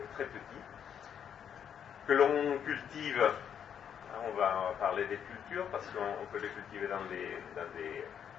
très petit, que l'on cultive. On va parler des cultures, parce qu'on peut les cultiver dans des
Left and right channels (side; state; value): right; quieter; 8.4 dB